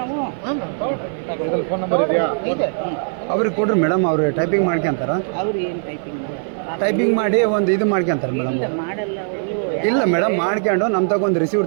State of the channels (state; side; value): silent; left; 55 dB below the other